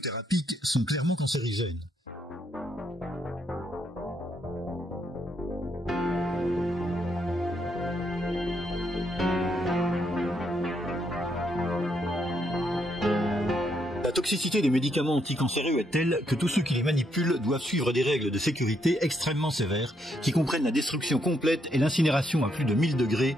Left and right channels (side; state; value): both; normal; correlation 0.76